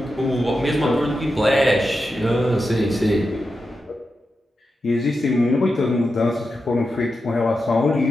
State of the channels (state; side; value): normal; both; correlation 0.89